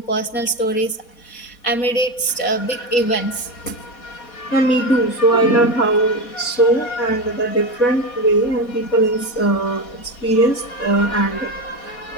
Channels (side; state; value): right; late; 4.2 ms